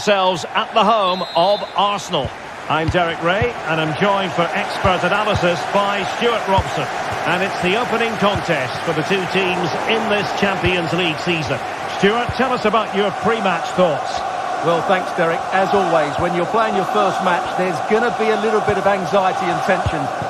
at the home of Arsenal. I'm Derek Ray, and I'm joined for expert analysis by Stuart Robson. And it's the opening contest for the two teams in this Champions League season. Stuart, tell us about your pre-match thoughts. Well, thanks, Derek. As always, when you're playing your first match, there's going to be a little bit of anxiety and tension.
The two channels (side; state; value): both; identical; correlation 1.00